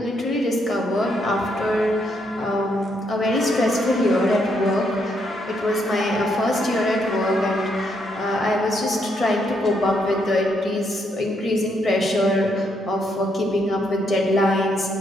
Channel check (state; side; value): normal; both; correlation 0.75